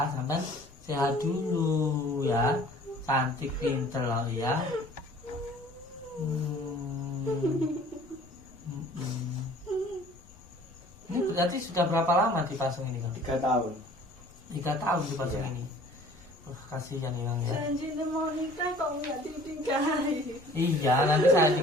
sampean sehat dulu ya. Cantik pinter loh ya. Ini berarti sudah berapa lama dipasung ini Kang? 3 tahun. 3 tahun dipasung Iya. ini. Kasihan ya Kang ya. Janji mau nikah kok nggak dinikahi. Iya, nanti saya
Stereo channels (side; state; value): left; noise; rumble, 24 dB below the sound